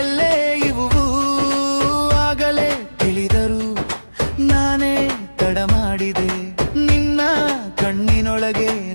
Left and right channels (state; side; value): inverted; both; correlation -1.00